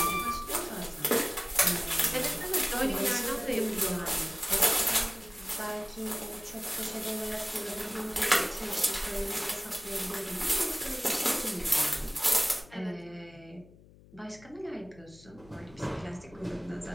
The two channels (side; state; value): left; noise; hum, 23 dB below the sound